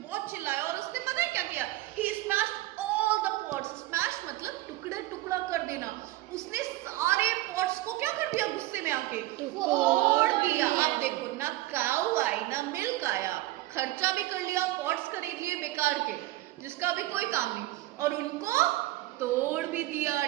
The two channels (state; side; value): quieter; left; 17.4 dB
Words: चिल्लाया और उसने पता है क्या किया? He smashed all the pots। Smash मतलब टुकड़ा टुकड़ा कर देना। उसने सारे पॉट्स को क्या कर दिया? गुस्से में आके तोड़ दिया। अब देखो ना काऊ आई ना मिल्क आया, खर्चा भी कर लिया, पॉट्स खरीद लिए बेकार के जिसका भी कोई काम नहीं, और उनको तोड़ भी दिया।